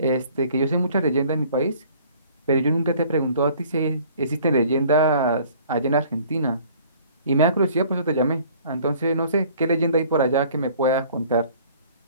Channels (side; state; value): both; inverted; correlation -0.53